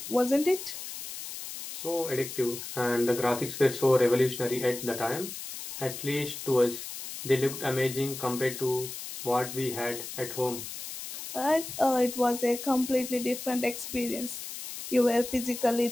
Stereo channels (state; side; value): noise; left; hiss, 9 dB below the sound